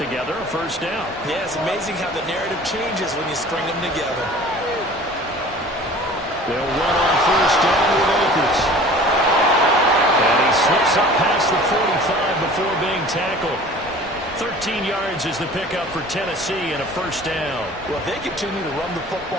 a first down. Yeah, it's amazing how the narrative changes when you string them together. They'll run on first down with Akers. And he slips up past the 45 before being tackled. 13 yards is the pickup for Tennessee and a first down. Well, if they continue to run the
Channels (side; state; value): both; normal; correlation 0.45